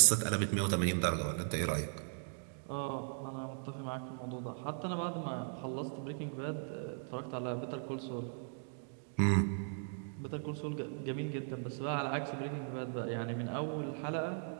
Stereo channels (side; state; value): left; silent; digital silence